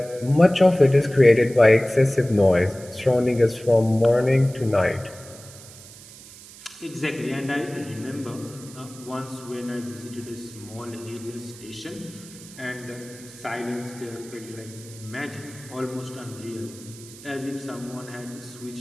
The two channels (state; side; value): noise; right; hiss, 18 dB below the sound